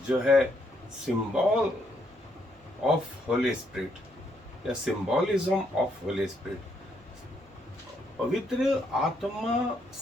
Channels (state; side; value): noise; right; hum, 29 dB below the sound